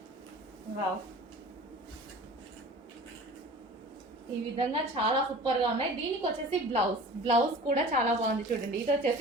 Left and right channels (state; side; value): normal; both; correlation 0.41